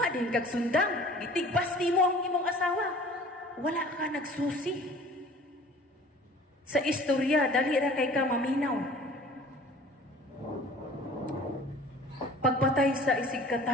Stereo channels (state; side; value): normal; both; correlation 0.47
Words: din kag sundang. Gitigbas mo ang imong asawa. Wala ka nagsusi. sa istorya, dali ra kay ka maminaw. Pagpatay sa isig